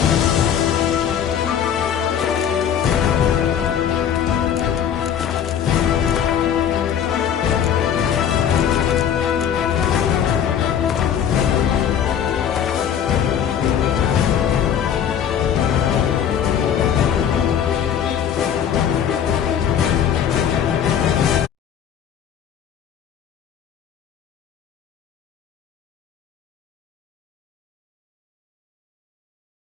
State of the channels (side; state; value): right; quieter; 8.8 dB